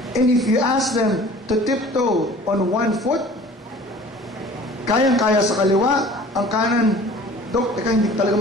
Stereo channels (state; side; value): normal; both; correlation 0.47